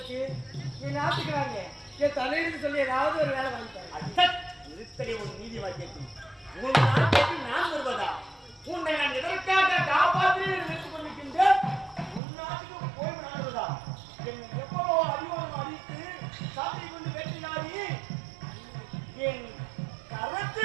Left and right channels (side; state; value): left; drops out; at 12.2 s